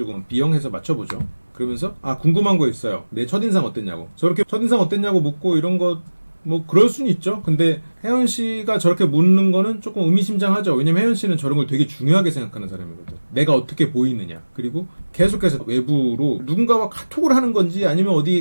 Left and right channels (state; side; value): inverted; both; correlation -1.00